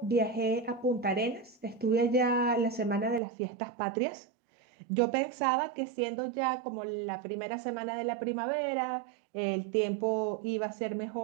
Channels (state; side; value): drops out; left; at 3.2 s